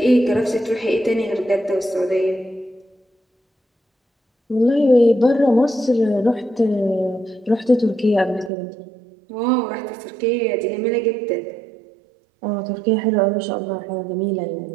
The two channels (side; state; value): left; drops out; at 8.5 s